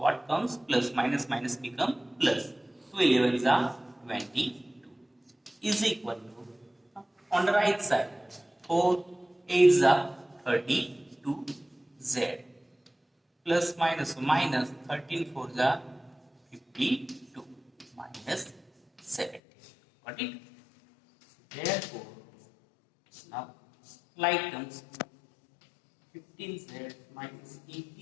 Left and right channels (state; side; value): drops out; right; at 19.4 s